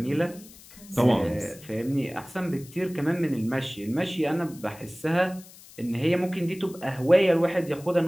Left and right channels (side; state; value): left; noise; hiss, 21 dB below the sound